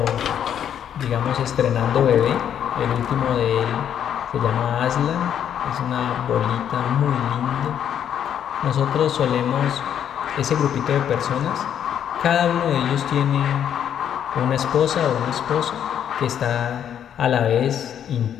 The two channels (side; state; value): right; quieter; 9.3 dB